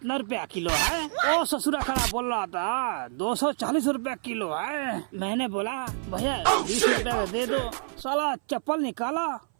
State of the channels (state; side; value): silent; left; 57 dB below the other